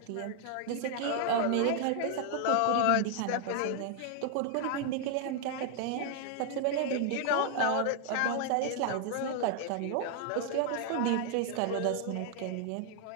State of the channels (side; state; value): both; different; correlation 0.00